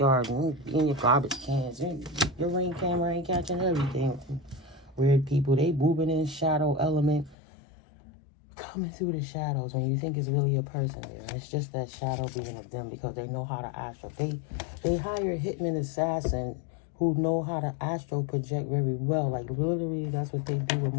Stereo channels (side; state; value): right; drops out; at 7.4 s